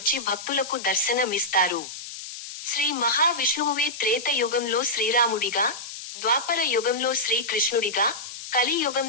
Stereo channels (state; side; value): noise; left; hiss, 11 dB below the sound